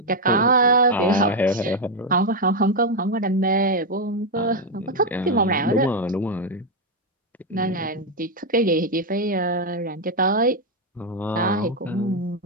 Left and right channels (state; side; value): normal; both; correlation 0.04